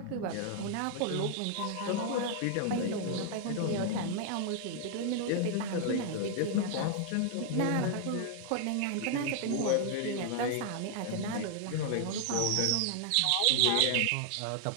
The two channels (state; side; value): different; both; correlation 0.00